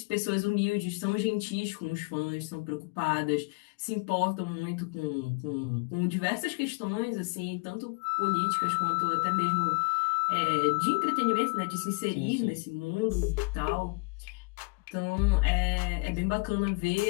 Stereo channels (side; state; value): right; quieter; 29.8 dB